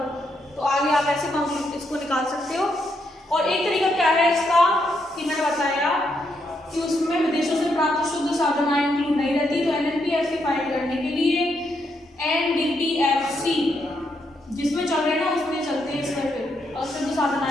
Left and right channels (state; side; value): normal; both; correlation 0.78